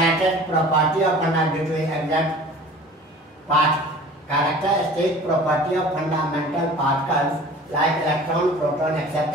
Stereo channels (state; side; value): normal; both; correlation 0.44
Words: property of characteristic property of fundamental particles like electron, proton,